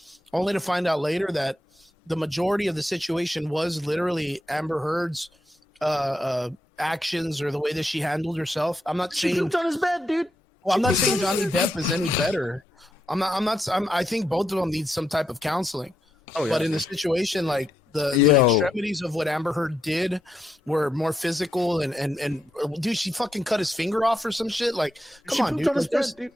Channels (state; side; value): normal; both; correlation 0.82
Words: only to find out later that the majority of the situation was literally Amber Heard's actions or the way that she handled herself. I'm not saying she pooped on his bed, dude. Well, I'm not saying Johnny Depp is any better. I think both of them need some type of counseling. Oh, yeah. But in the situation, like the extremities of what Amber Heard did were more physical and dude, she fucking cut his finger off or some shit. Like, come on, dude.